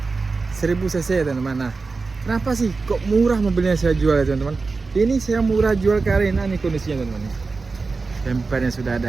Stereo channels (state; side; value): quieter; left; 4.1 dB